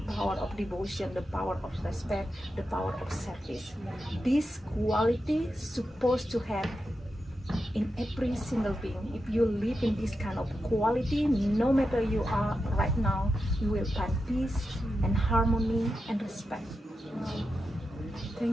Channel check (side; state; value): both; normal; correlation 0.89